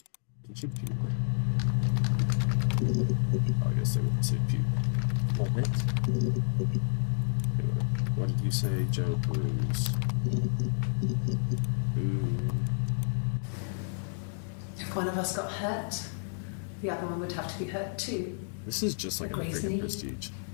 Did you puke? I guess they wouldn't say puke. Moment. Okay, what did you say, Joe? Bruise. Ooh. If one of us got hurt, the other one would have to be hurt too. This is just like A a grazed freaking knee, Prestige.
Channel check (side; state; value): right; silent; digital silence